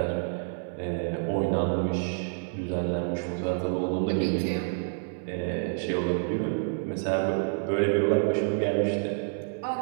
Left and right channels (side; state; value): left; silent; 59 dB below the other